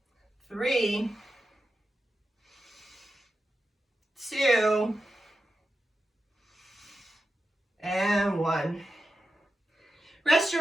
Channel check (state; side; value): normal; both; correlation 0.90